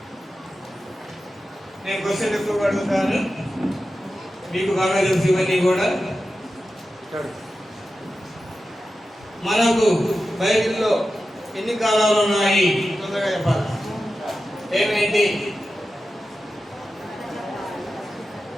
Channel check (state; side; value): normal; both; correlation 0.92